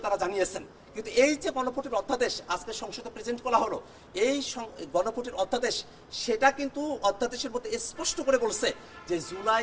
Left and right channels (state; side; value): identical; both; correlation 1.00